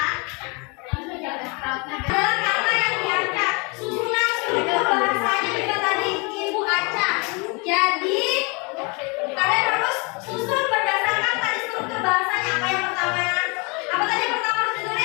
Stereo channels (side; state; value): right; quieter; 30.7 dB